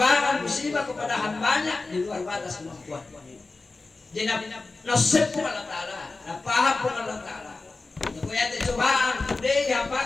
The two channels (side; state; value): right; quieter; 3.6 dB